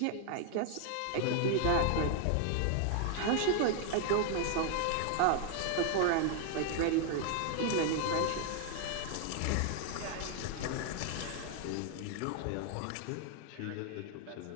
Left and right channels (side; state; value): both; different; correlation 0.00